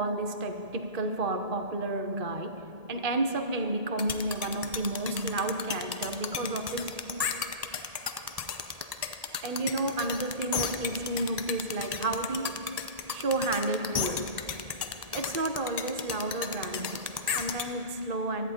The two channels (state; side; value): late; left; 1.8 ms